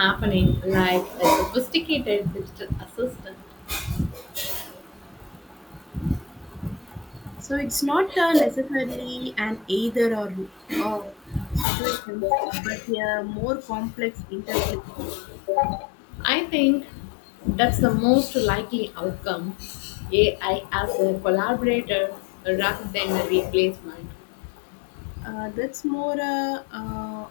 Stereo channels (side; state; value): right; drops out; at 11.7 s